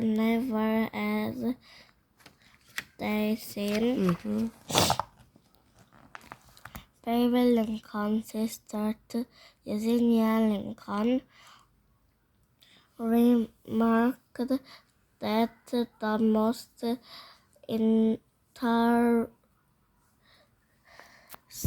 as they seem. Baby Lincoln's sister Eugenia Lincoln remarked that the most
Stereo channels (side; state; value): both; identical; correlation 1.00